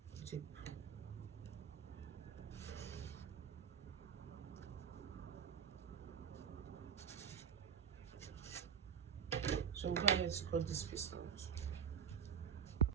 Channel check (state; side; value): quieter; left; 7.6 dB